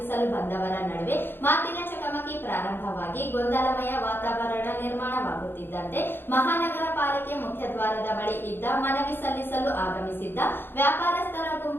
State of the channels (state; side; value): late; right; 0.10 ms